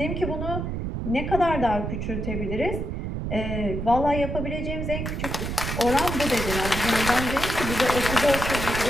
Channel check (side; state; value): right; noise; rumble, 3 dB below the sound